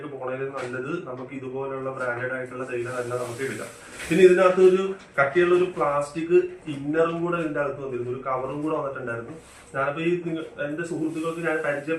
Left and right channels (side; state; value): both; identical; correlation 1.00